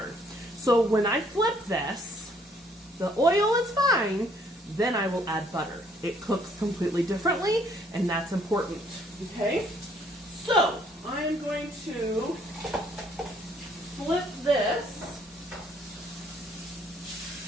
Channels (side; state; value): both; normal; correlation 0.64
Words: So when I flip this, the oil is fine, then I will add butter. It cooks completely differently, and that's important, okay? So I'm going to flip this,